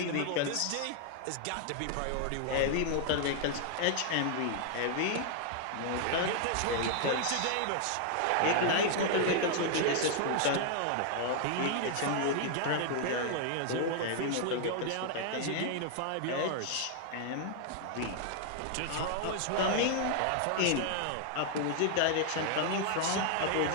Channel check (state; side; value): different; both; correlation 0.00